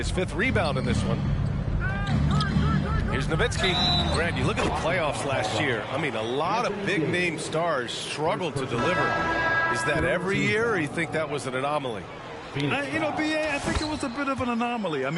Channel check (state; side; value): identical; both; correlation 1.00